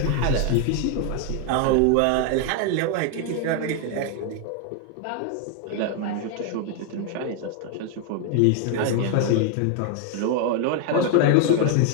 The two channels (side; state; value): both; different; correlation 0.01